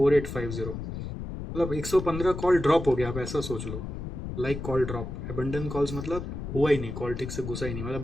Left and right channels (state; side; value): noise; left; rumble, 7 dB below the sound